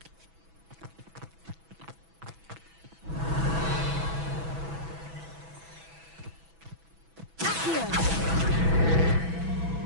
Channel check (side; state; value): left; late; 6.1 ms